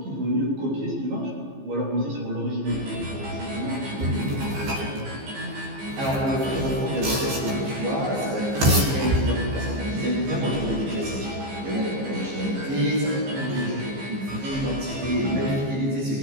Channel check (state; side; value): late; left; 15 ms